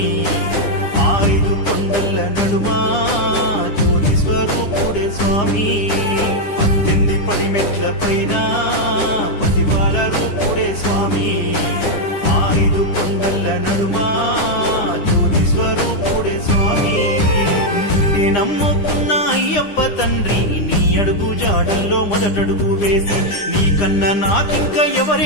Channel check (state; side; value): late; right; 9.9 ms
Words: 5 కొండల నడుమా జ్యోతి స్వరూపుడే స్వామి 18 పడిమెట్ల పైన పసిబాల రూపుడే స్వామి 5 కొండల నడుమా జ్యోతి స్వరూపుడే స్వామి నిన్నే నమ్ముకున్న అయ్యప్ప తండ్రి నీ అడుగు జాడల్లో మొదటడుగు వేసి నీకన్నా నాకింక